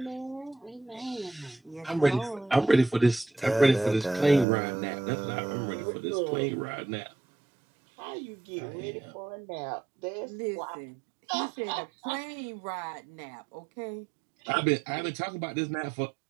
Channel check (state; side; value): drops out; left; at 4.5 s